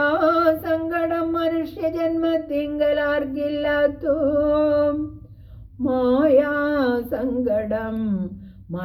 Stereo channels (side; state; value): both; identical; correlation 1.00